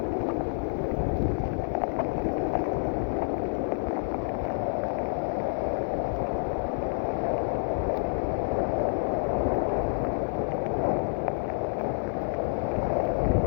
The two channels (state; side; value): silent; right; digital silence